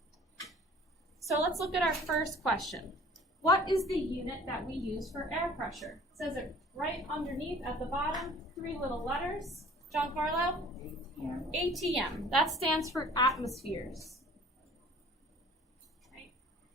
So let's look at our first question. What is the unit that we use for air pressure? It says it right underneath at the bottom, 3 little letters. Giancarlo? ATM. That stands for atmospheres. Okay.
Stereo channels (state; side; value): normal; both; correlation 0.50